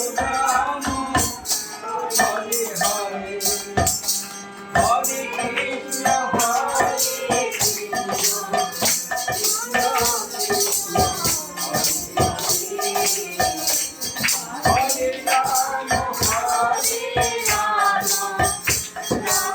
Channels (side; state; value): both; identical; correlation 1.00